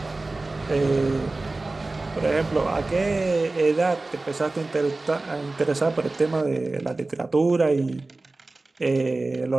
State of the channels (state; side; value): quieter; left; 3.2 dB